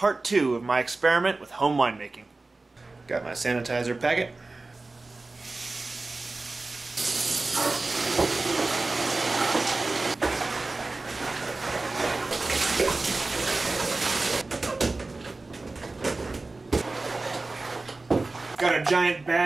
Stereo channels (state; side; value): quieter; left; 3.4 dB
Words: 2 of my experiment with home winemaking. Got my sanitizer packet. Got a giant